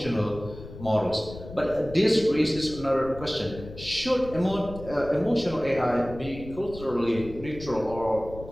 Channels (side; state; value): left; noise; rumble, 14 dB below the sound